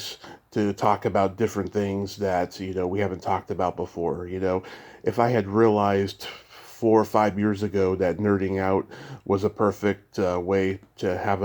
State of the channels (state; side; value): identical; both; correlation 1.00